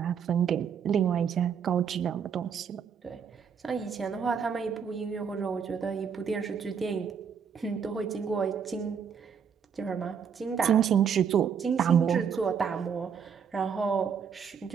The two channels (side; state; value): left; quieter; 7.1 dB